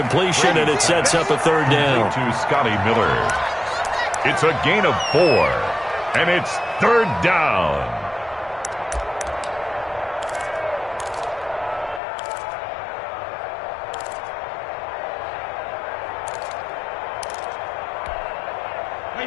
and it sets up a third down. To Scotty Miller. It's a gain of 4, and it's third down.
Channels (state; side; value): drops out; right; at 12.0 s